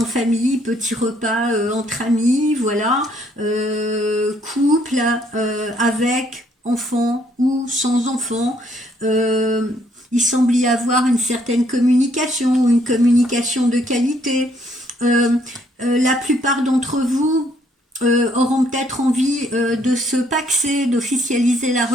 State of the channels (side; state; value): both; normal; correlation 0.67